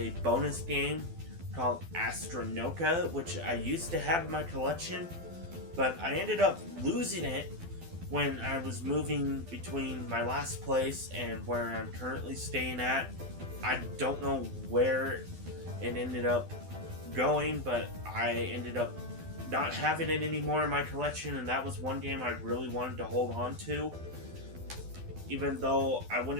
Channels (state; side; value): late; left; 12 ms